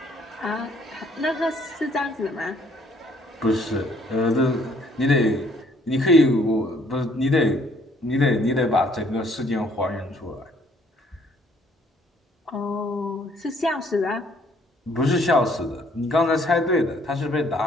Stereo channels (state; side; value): normal; both; correlation 0.63